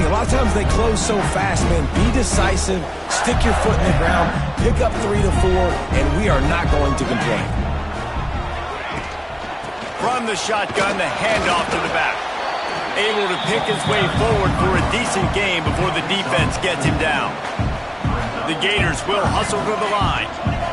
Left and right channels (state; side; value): identical; both; correlation 1.00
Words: A lot of times they close so fast, man. Be decisive, stick your foot in the ground, pick up 3 to 4, and we are not going to complain. From the shotgun, the handoff to the back. Able to pick his way forward for a decent gain before the defense gets him down. The Gators will hustle to the line.